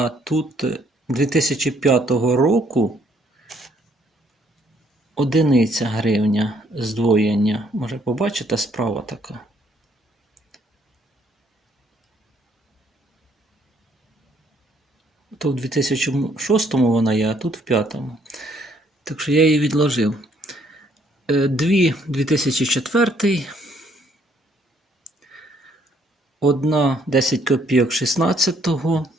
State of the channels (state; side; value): normal; both; correlation 0.67